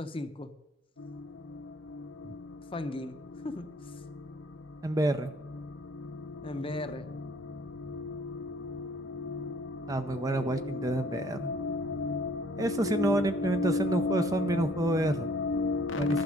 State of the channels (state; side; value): normal; both; correlation 0.58